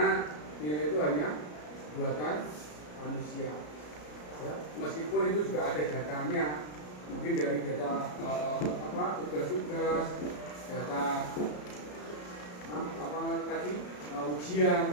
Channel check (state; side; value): late; right; 33 ms